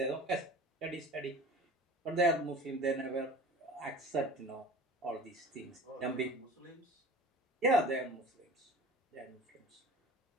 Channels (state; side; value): normal; both; correlation 0.40